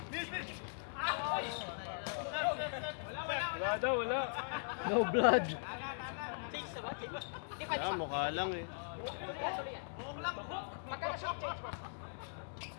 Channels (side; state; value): right; silent; digital silence